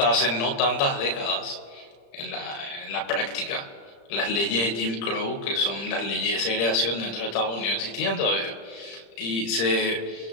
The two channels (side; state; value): right; late; 35 ms